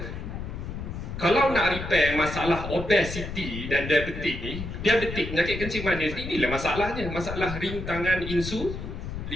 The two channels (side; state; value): left; noise; rumble, 7 dB below the sound